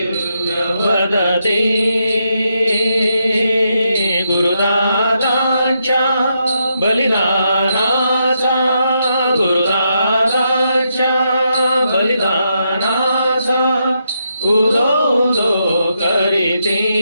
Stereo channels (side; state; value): both; inverted; correlation -0.81